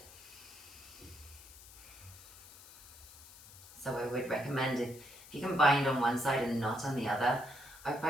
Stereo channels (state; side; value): noise; left; hiss, 19 dB below the sound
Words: So I would recommend if you can bind on one side and not on the other,